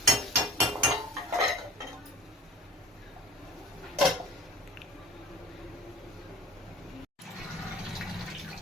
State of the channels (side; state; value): both; normal; correlation 0.42